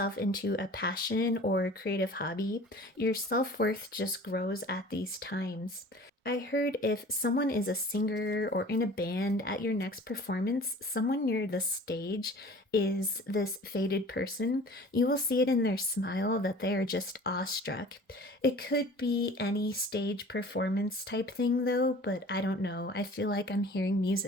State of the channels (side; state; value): both; normal; correlation 0.44